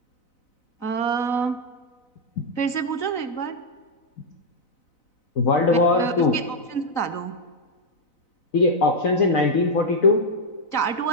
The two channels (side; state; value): right; late; 4.0 ms